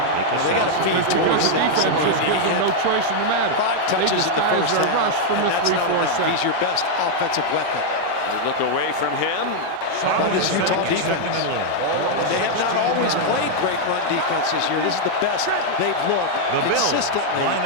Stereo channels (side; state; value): both; different; correlation 0.00